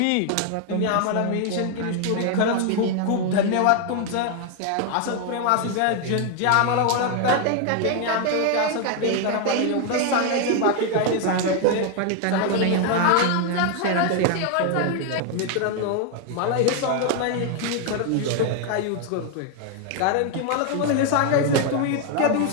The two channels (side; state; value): both; different; correlation 0.00